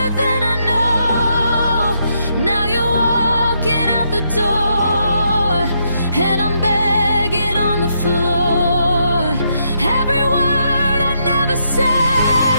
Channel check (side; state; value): both; inverted; correlation -0.77